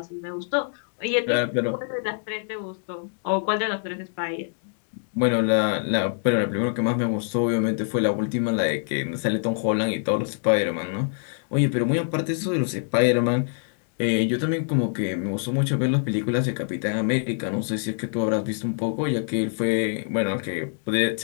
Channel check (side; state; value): right; silent; digital silence